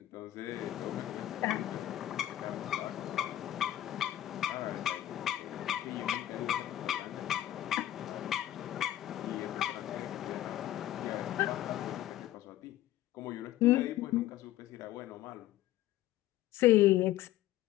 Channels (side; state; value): right; quieter; 13.8 dB